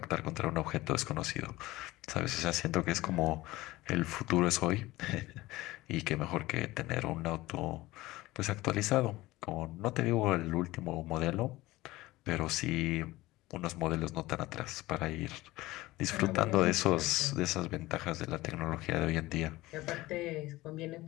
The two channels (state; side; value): quieter; right; 18.7 dB